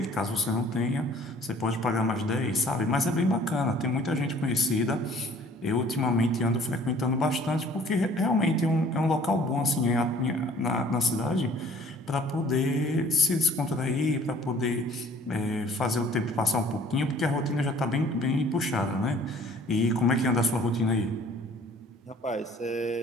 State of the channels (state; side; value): normal; both; correlation 0.53